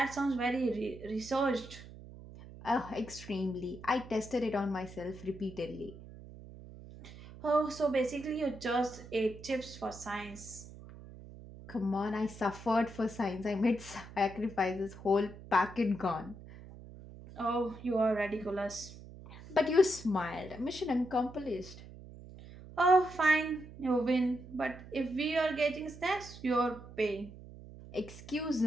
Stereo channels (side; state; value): right; noise; hum, 16 dB below the sound